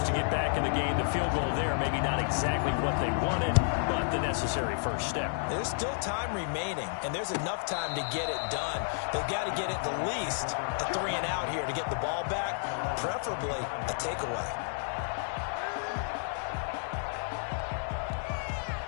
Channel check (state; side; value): silent; right; digital silence